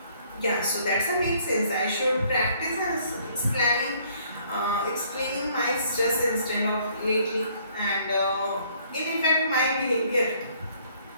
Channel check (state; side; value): inverted; both; correlation -0.63